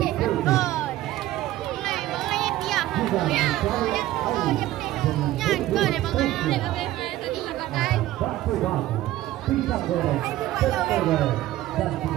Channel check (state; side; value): quieter; left; 15.1 dB